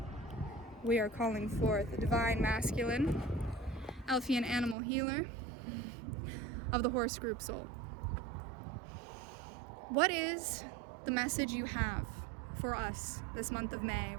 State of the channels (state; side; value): drops out; left; at 4.8 s